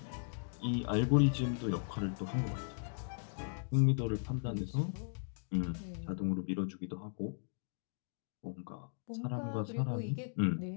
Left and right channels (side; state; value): right; silent; digital silence